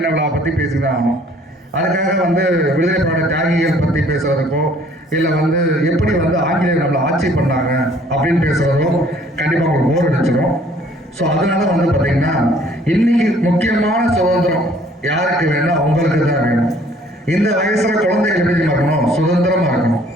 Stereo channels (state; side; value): normal; both; correlation 0.58